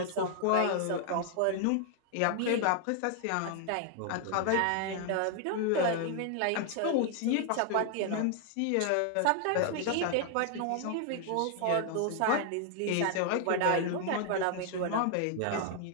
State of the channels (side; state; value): both; different; correlation 0.00